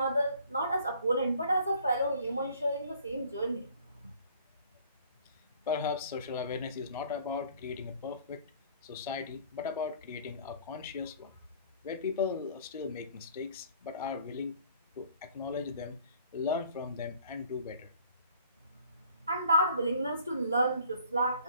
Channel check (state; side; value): inverted; both; correlation -0.55